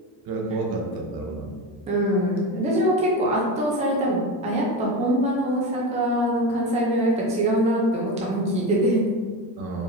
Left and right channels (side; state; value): both; normal; correlation 0.21